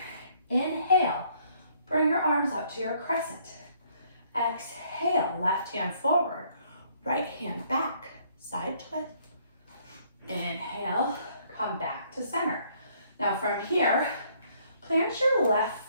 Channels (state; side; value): inverted; both; correlation -0.65